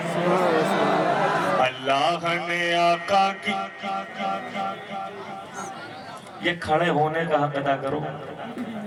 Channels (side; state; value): both; identical; correlation 1.00